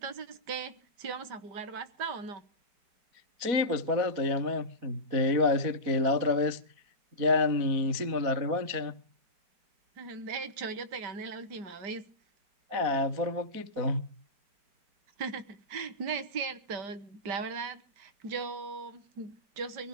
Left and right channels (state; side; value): late; left; 4.1 ms